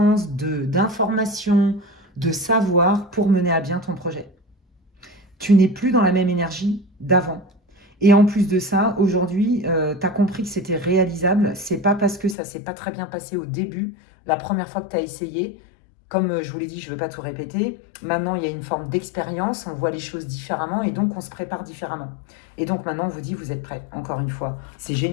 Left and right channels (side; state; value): right; drops out; at 12.4 s